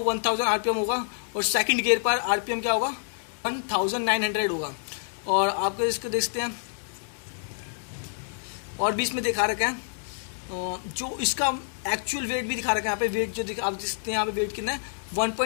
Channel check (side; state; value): right; silent; 58 dB below the other